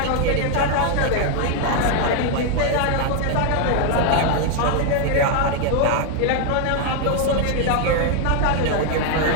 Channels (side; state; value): both; different; correlation 0.01